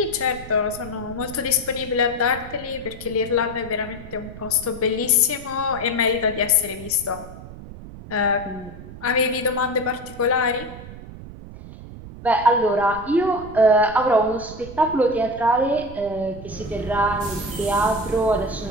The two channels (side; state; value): right; noise; rumble, 14 dB below the sound